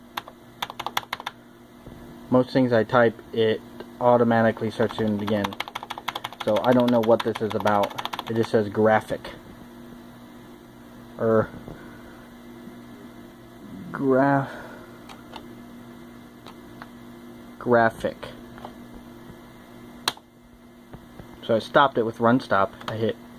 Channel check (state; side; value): identical; both; correlation 1.00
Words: Most things I type, it automatically starts doing it again. So I don't know what this is about. It just says graphic. Or graphic. So I stopped it with run stop. I hit